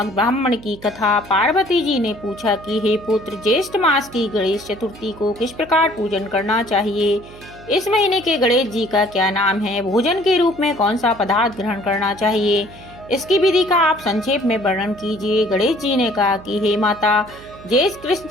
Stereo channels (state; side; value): noise; right; hum, 20 dB below the sound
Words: ब्राह्मण की कथा। पार्वती जी ने पूछा कि हे पुत्र, ज्येष्ठ मास की गणेश चतुर्थी को किस प्रकार पूजन करना चाहिए। इस महीने के गणेश जी का क्या नाम है। भोजन के रूप में कौन सा पदार्थ ग्रहण करना चाहिए, इसकी विधि का आप संक्षेप में वर्णन कीजिए। गणेश जी ने कहा कि हे माता, ज्येष्ठ कृष्ण